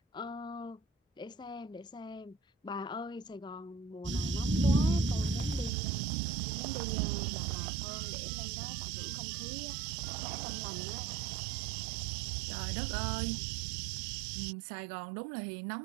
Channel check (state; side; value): drops out; left; at 5.7 s